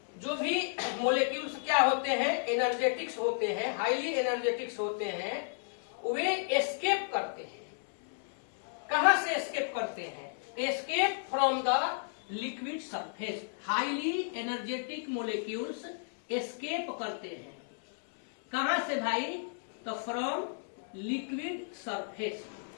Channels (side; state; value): right; silent; digital silence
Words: जो भी मोलेक्यूल्स क्या होते हैं, एनर्जेटिक्स होते हैं, हाईली एनर्जेटिक्स होते हैं, वे एस्केप करते हैं। कहां से एस्केप करते हैं, escape from the liquid surface. Highly energetic molecules escape करते हैं कहां से भाई, तो from liquid surface.